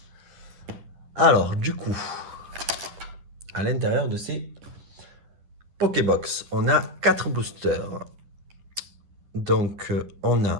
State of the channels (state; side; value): late; left; 10 ms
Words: Alors, du coup, à l'intérieur de ces Pokébox, on a 4 boosters. Donc, on